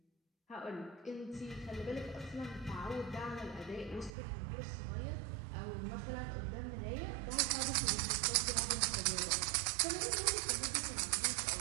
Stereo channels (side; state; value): left; drops out; at 4.1 s